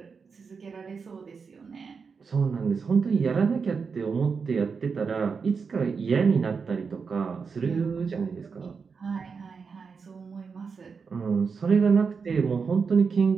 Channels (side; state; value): left; quieter; 5.4 dB